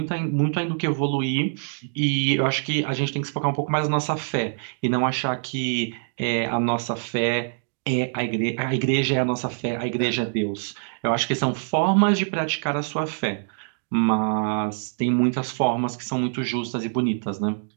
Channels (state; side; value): silent; left; digital silence